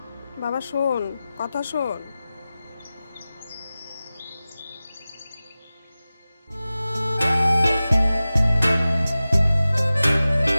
বাবা শোন, কথা শোন।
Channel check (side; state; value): both; inverted; correlation -0.96